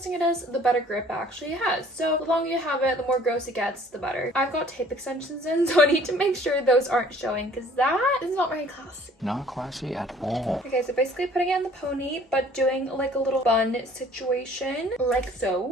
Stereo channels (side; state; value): both; normal; correlation 0.55